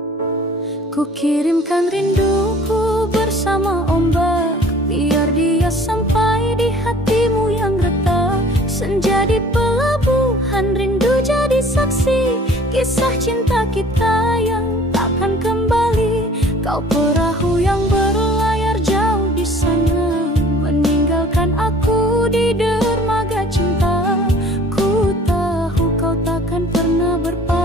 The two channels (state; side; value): normal; both; correlation 0.50